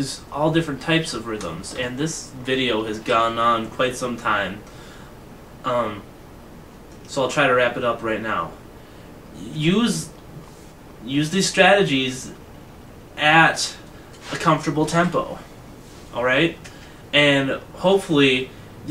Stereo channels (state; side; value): identical; both; correlation 1.00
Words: all different types of rhythms, and this video has gone on quite some time. So I'll try to wrap it up right now. Use these strategies at a comfortable tempo, alright? And hopefully